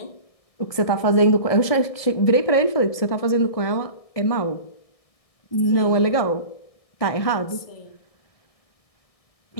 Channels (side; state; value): right; late; 1.6 ms